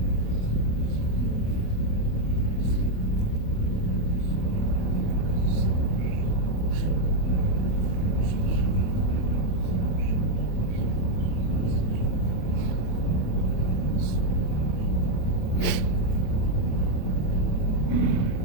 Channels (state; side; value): late; right; 28 ms